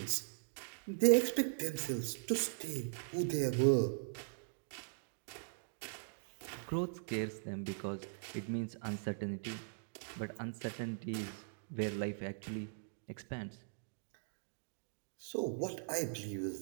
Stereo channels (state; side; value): silent; left; digital silence